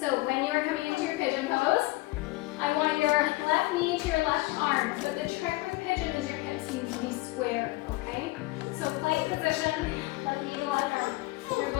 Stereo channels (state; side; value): quieter; right; 20.7 dB